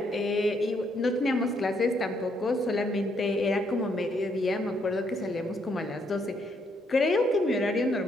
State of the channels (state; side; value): normal; both; correlation 0.73